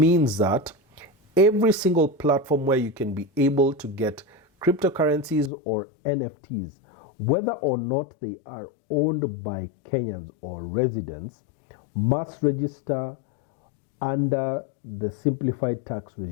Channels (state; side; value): drops out; right; at 5.5 s